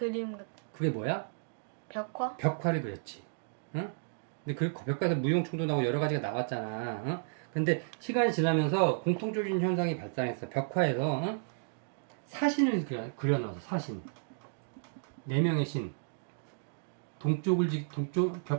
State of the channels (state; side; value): silent; left; digital silence